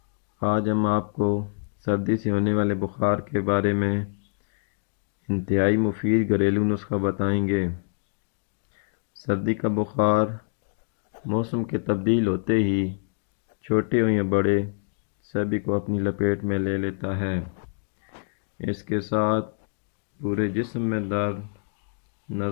آج ہم آپ کو سردی سے ہونے والے بخار کے بارے میں انتہائی مفید گھریلو نسخہ بتائیں گے۔ سردی کا بخار موسم کے تبدیل ہوتے ہی چھوٹے ہوں یا بڑے سبھی کو اپنی لپیٹ میں لے لیتا ہے۔ اس کے ساتھ پورے جسم میں درد،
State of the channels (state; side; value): silent; right; digital silence